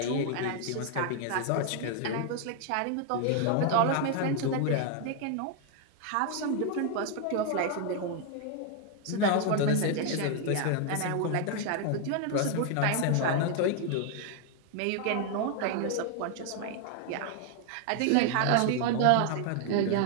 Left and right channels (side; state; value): both; different; correlation 0.00